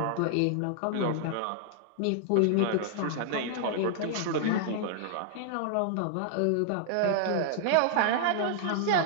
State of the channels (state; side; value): different; both; correlation -0.01